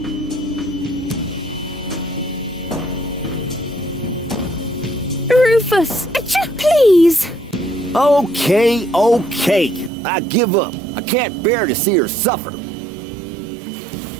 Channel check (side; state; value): left; drops out; at 9.9 s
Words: Rufus, please. Okay. I give up. I can't bear to see her suffer.